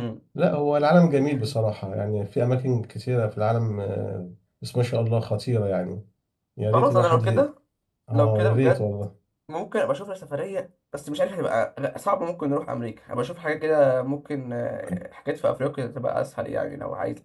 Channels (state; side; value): identical; both; correlation 1.00